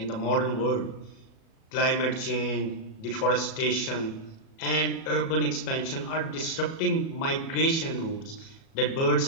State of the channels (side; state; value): right; late; 37 ms